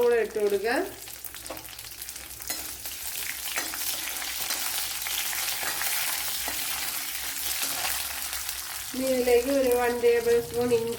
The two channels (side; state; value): both; identical; correlation 1.00